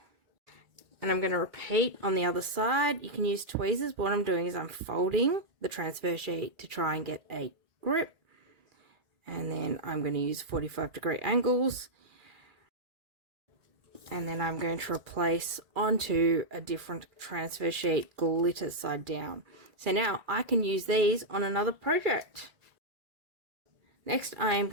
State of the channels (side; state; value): left; late; 1.9 ms